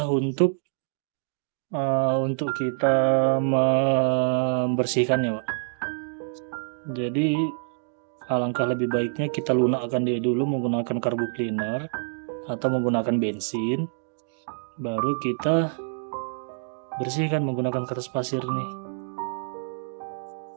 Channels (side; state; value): left; silent; digital silence